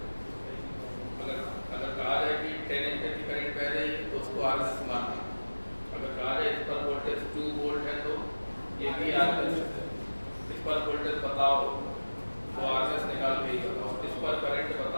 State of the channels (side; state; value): both; inverted; correlation -1.00